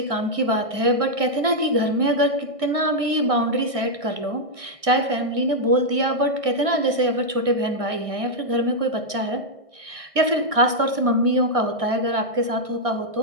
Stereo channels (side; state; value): left; late; 1.6 ms